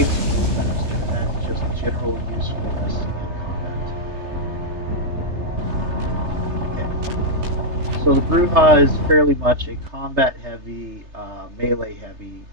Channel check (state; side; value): late; left; 3.3 ms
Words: you move faster. That's just general usefulness in combat. Okay. So the Bruja is fairly much a combat-heavy, melee-heavy